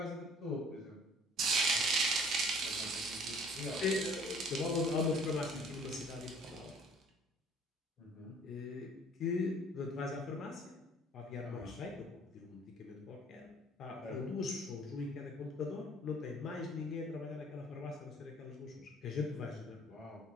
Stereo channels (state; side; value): normal; both; correlation 0.54